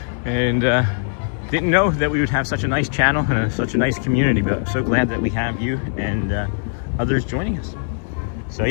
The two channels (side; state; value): right; silent; 65 dB below the other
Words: And didn't know that we would have such a nice channel and such a nice community, but I'm so glad that we have you and others joining us. So